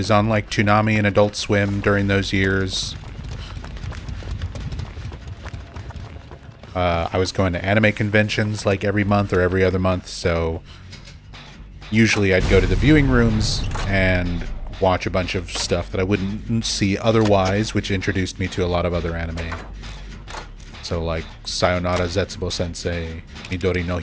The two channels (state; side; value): identical; both; correlation 1.00